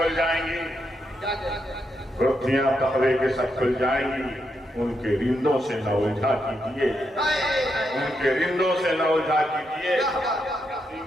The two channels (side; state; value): both; normal; correlation 0.82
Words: جائیں گی رتیاں تقوی کے سب کھل جائیں گی ان کے رندوں سے نہ الجھا کیجئے ان کے رندوں سے نہ الجھا کیجئے